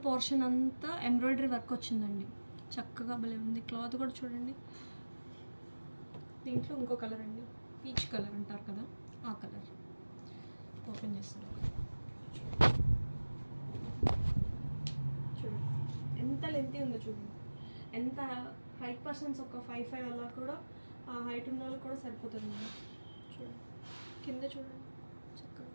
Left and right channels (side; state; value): both; inverted; correlation -1.00